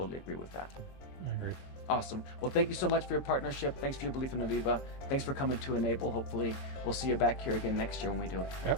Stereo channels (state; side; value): late; right; 23 ms